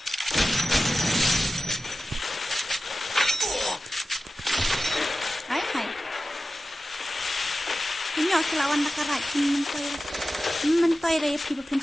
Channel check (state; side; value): normal; both; correlation 0.94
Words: Hai. Ini aku lawan nakarat mentoi raya pi